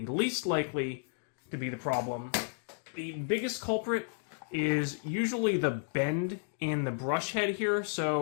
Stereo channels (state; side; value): silent; right; digital silence